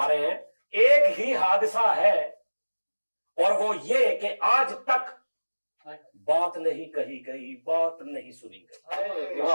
रहे हैं एक ही हादसा है और वो ये कि आज तक बात नहीं कही गई, बात नहीं सुनी गई।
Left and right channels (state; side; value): inverted; both; correlation -1.00